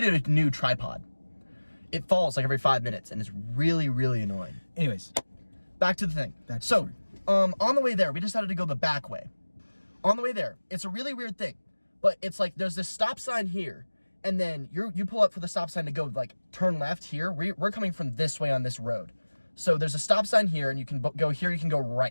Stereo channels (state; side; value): inverted; both; correlation -1.00